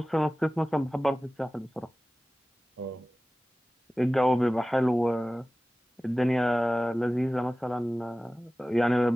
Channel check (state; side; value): normal; both; correlation 0.97